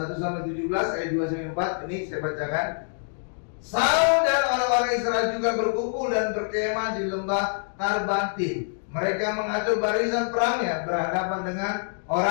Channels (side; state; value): right; silent; digital silence